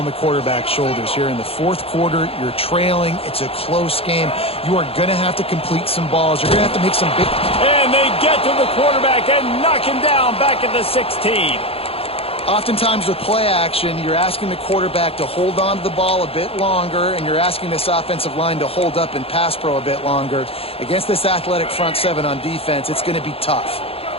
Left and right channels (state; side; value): late; right; 0.28 ms